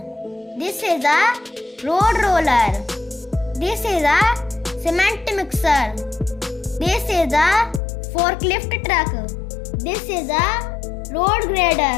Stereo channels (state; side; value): drops out; right; at 7.8 s